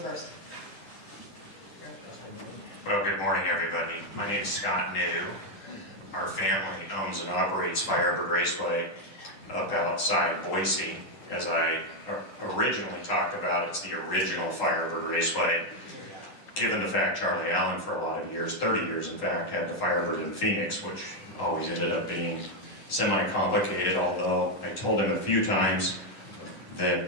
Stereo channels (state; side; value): late; right; 10 ms